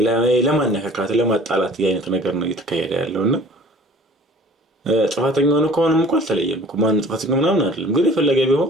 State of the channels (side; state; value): both; normal; correlation 0.49